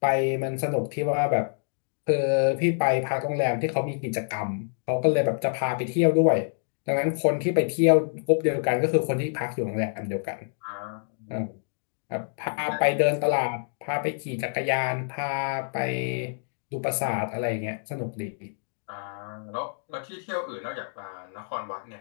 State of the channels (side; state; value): right; silent; digital silence